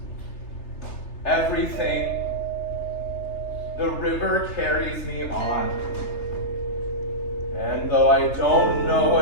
everything. The river carries me on. And though I don't know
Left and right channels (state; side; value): late; right; 3.3 ms